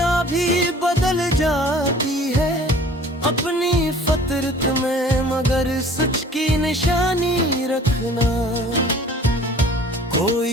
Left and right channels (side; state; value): both; normal; correlation 0.49